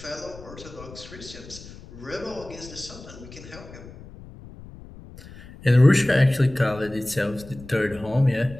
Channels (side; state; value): left; noise; rumble, 17 dB below the sound